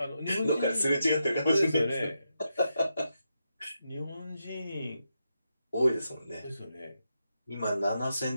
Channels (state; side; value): inverted; both; correlation -0.85